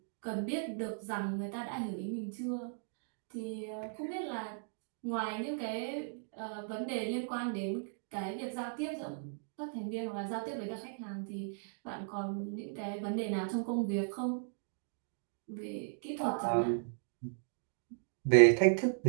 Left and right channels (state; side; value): silent; left; digital silence